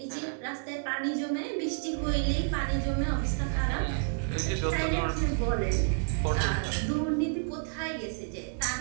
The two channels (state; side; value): silent; left; digital silence